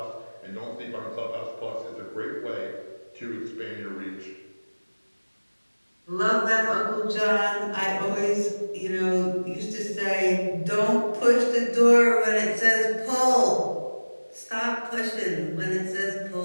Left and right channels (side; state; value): both; inverted; correlation -1.00